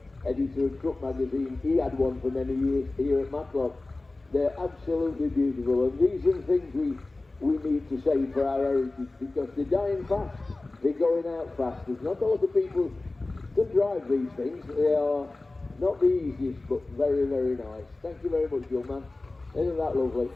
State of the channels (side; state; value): right; quieter; 3.1 dB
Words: editor of Truck Magazine, he had one for many years here at Matlock. They're absolutely beautiful, and these are the things we need to save for our heritage, because they're dying fast, they're going out fast. There's not a lot of people to drive these things. They are not the easiest, but very nice. Thank you very much, young man. Isn't that lovely?